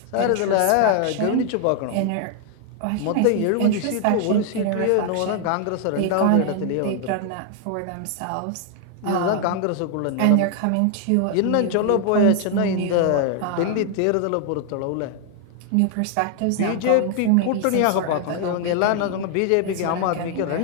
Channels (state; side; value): different; both; correlation 0.00